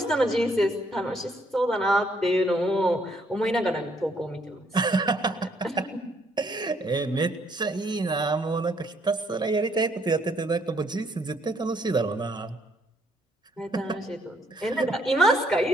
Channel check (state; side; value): normal; both; correlation 0.69